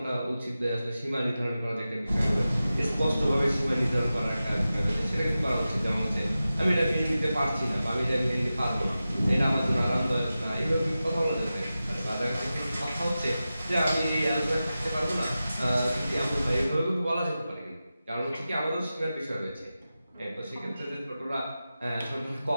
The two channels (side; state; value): both; inverted; correlation -0.94